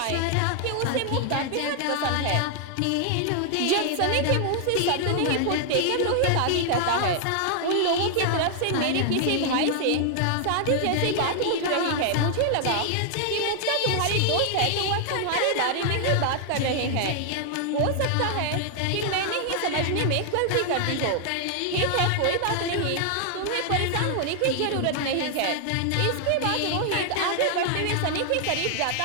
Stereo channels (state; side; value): different; both; correlation 0.00